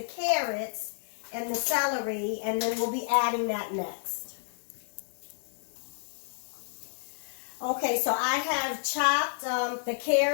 carrots and the celery, and then we'll be adding that next. Okay, so I have chopped the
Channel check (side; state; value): right; silent; 58 dB below the other